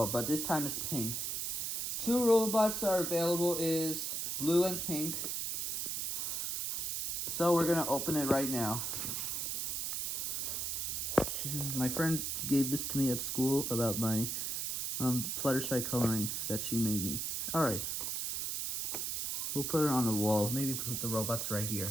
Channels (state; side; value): noise; right; hiss, 1 dB below the sound